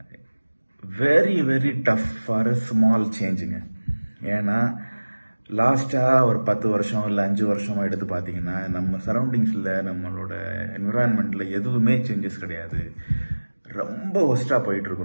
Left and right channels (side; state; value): both; inverted; correlation -1.00